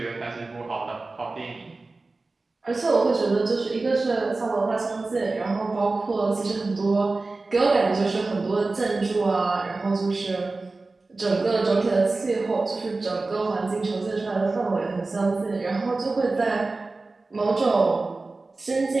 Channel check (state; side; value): quieter; left; 3.5 dB